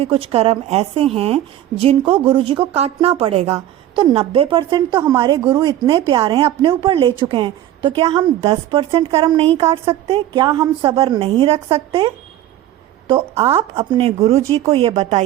कुछ कर्म ऐसे हैं जिनको गुरुजी को काटना पड़ेगा, तो 90% तो हमारे गुरु इतने प्यारे हैं, अपने ऊपर ले चुके हैं, तो क्या हम 10% कर्म नहीं काट सकते? क्या हम सब्र नहीं रख सकते? तो आप अपने गुरुजी को ये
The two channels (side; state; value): left; quieter; 12.8 dB